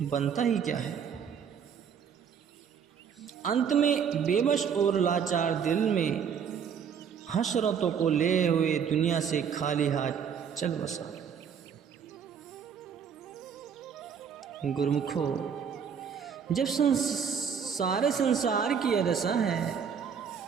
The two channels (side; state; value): left; quieter; 7.3 dB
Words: बनता ही क्या है। अंत में बेबस और लाचार दिल में हसरतों को ले हुए दुनिया से खाली हाथ चल बसा। गुरुमुखो, जब सारे संसार की यह दशा है